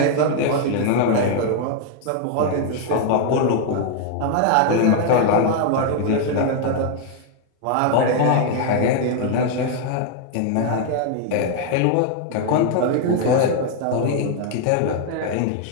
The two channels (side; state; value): both; different; correlation 0.00